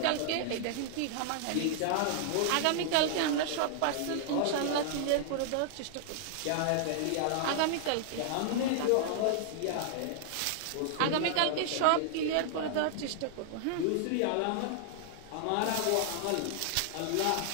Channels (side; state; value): both; different; correlation -0.01